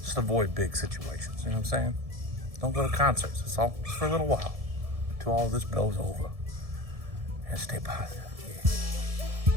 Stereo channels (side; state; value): left; late; 1.7 ms